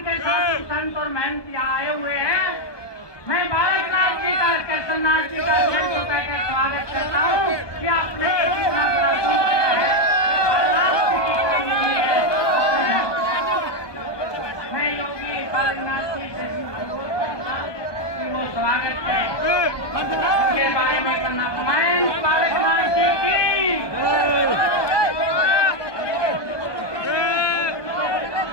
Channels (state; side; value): late; right; 1.2 ms